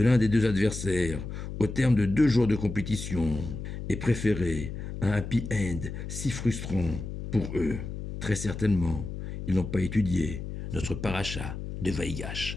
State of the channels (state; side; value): noise; left; hum, 7 dB below the sound